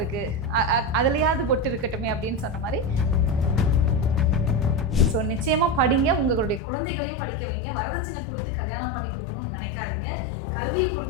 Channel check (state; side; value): drops out; right; at 6.6 s